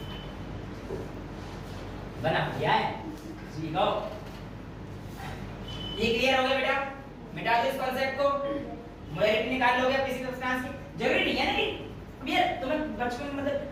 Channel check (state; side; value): identical; both; correlation 1.00